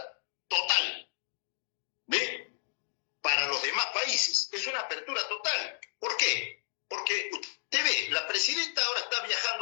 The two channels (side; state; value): right; silent; digital silence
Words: total. ¿Ve? Para los demás países es una apertura total. ¿Por qué? Porque usted ve, la presidenta ahora está